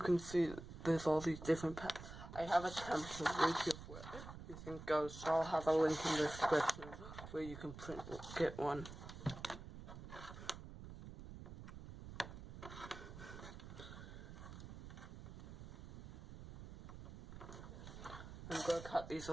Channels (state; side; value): noise; right; rumble, 12 dB below the sound